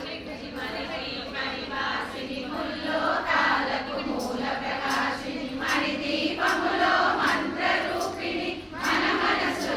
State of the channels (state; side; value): identical; both; correlation 1.00